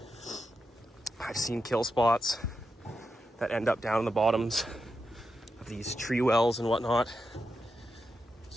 I've seen kill spots that end up down in the bottoms of these tree wells and whatnot.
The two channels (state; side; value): normal; both; correlation 0.87